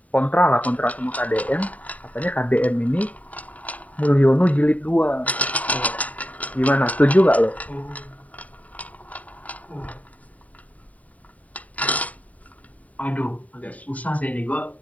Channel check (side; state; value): right; late; 0.070 ms